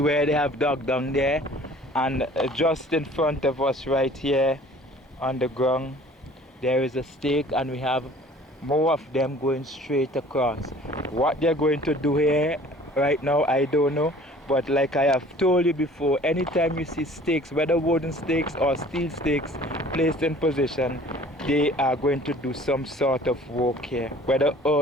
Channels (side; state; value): both; normal; correlation 0.50